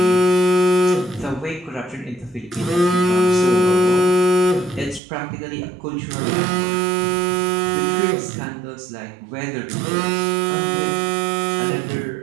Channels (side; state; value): left; drops out; at 5.0 s